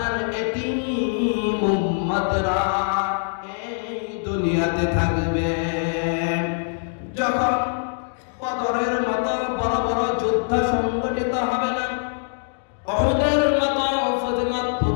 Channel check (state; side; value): silent; right; digital silence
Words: এতিম উম্মতেরা এই দুনিয়াতে থাকবে। যখন বদরের মতো বড় বড় যুদ্ধ সংগঠিত হবে না, উহুদের মতো